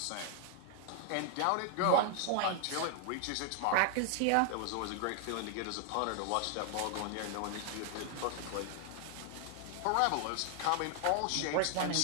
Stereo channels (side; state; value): both; different; correlation 0.00